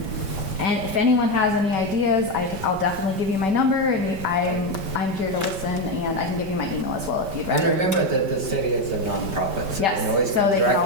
if anyone has any ideas, I'll definitely give you my number, and I'm here to listen, and I can give you my email as well if you'd rather. And remember that the city is a nonprofit, so Yes, they can always so come they can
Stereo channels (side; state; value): left; late; 5.1 ms